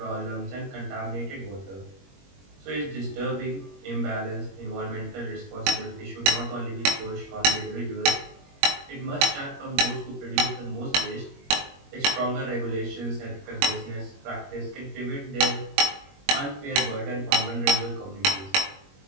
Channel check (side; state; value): left; late; 21 ms